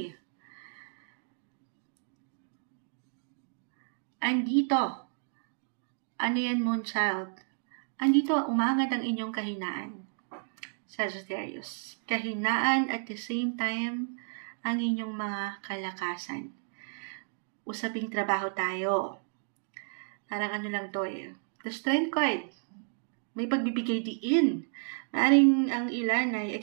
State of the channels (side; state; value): left; silent; digital silence